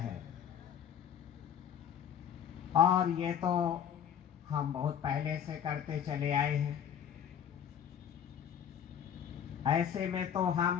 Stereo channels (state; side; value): quieter; right; 8.8 dB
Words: और ये तो हम बहुत पहले से करते चले आए हैं। ऐसे में तो